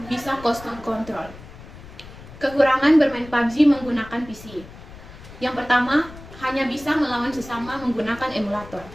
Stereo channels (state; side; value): noise; left; rumble, 17 dB below the sound